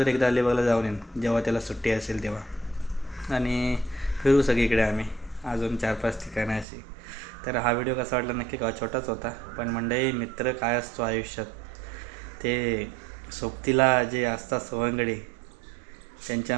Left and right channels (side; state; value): left; drops out; at 6.7 s